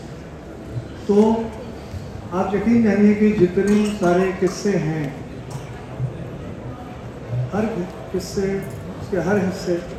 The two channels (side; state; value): both; identical; correlation 1.00